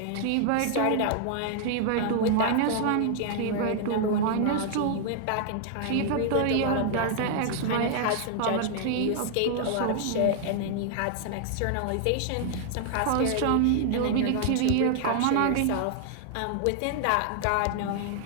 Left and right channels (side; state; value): both; different; correlation 0.00